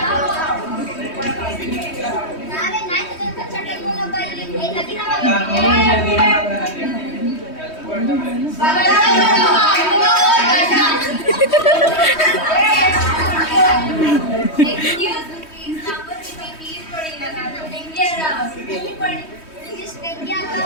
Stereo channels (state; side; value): late; right; 3.1 ms